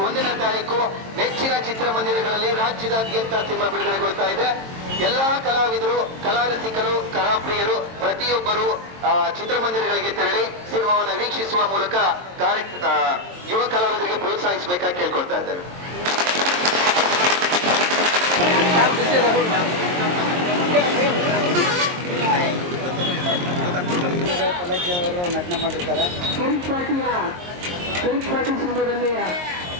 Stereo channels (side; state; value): left; late; 22 ms